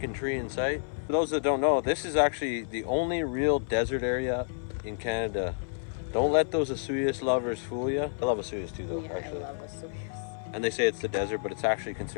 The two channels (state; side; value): silent; right; 58 dB below the other